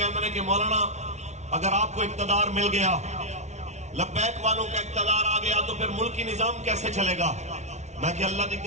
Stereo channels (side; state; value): left; late; 0.32 ms